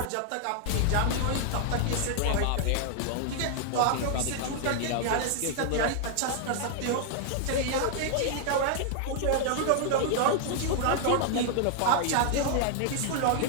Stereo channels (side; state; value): both; different; correlation 0.00